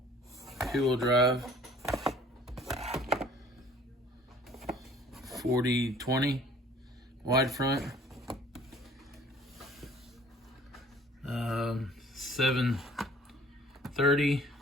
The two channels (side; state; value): both; normal; correlation 0.52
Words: 2-wheel drive. 40/20 wide front. 730,